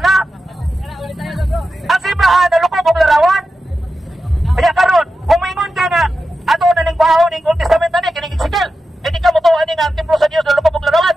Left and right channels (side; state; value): both; normal; correlation 0.91